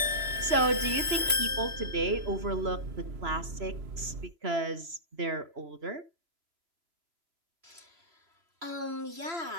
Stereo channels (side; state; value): left; late; 3.0 ms